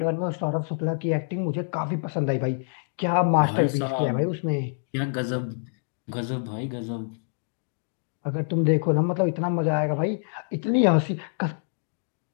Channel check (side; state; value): right; silent; digital silence